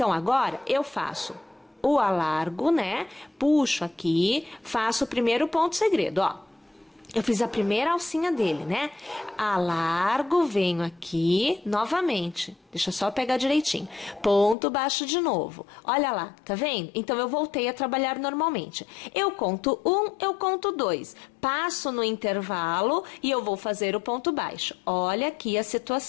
agora, eu faço o alargo, né? Puxo aqui, faço o primeiro ponto segredo, ó. Eu fiz a primeira alcinha dele, né? Alargo, venho aqui, novamente. Deixa eu só pegar direitinho. Ponto baixo de novo. Olha lá, tá vendo? Então, eu voltei a trabalhar normalmente. Eu conto 1, eu conto 2. Passo no intervalo e eu vou fazer o ponto baixo. Olha aqui a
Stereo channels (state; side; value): drops out; right; at 14.6 s